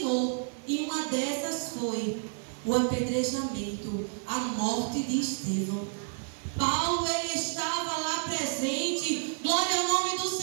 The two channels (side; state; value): left; silent; digital silence